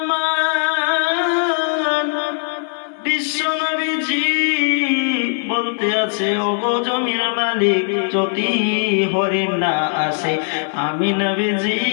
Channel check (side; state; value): right; silent; digital silence